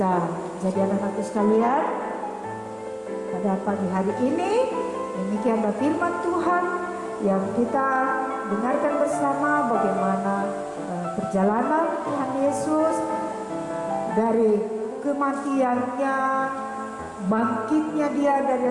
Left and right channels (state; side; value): identical; both; correlation 1.00